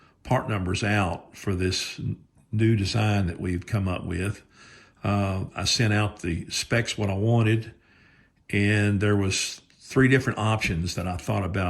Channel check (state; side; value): identical; both; correlation 1.00